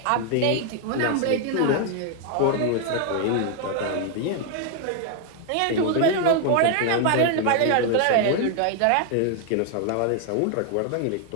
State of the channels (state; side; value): different; both; correlation 0.00